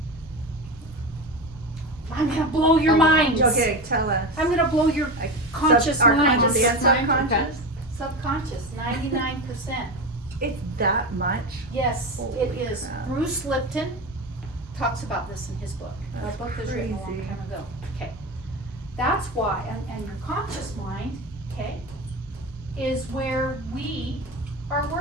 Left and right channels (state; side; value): normal; both; correlation 0.22